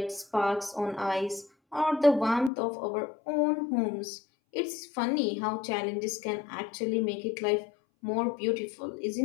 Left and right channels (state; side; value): drops out; right; at 2.5 s